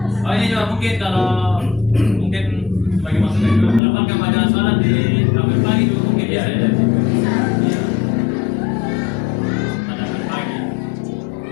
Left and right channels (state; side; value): drops out; right; at 3.8 s